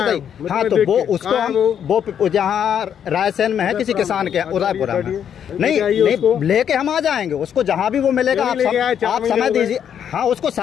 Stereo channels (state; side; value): quieter; right; 8.8 dB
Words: हाँ तो वो उसको हम वो जहाँ रायसेन में है किसी किसान के उदयपुरा में, नहीं लेके हम आ जाएंगे उसको, जहाँ भी वो मिलेगा। आप समय दीजिए, हाँ उसको